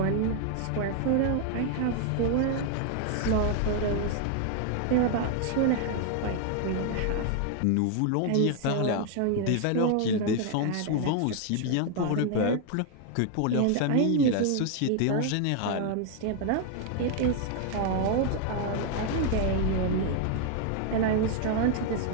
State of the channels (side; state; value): both; different; correlation 0.00